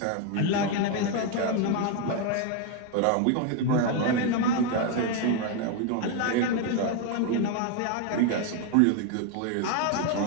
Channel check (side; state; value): both; different; correlation 0.01